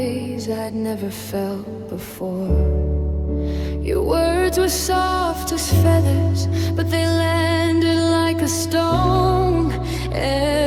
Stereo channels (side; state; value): both; identical; correlation 1.00